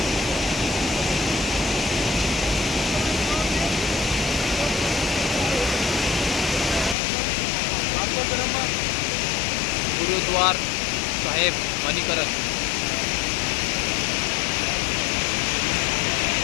गुरुद्वार साहेब मणिकरण.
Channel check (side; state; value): right; drops out; at 7.0 s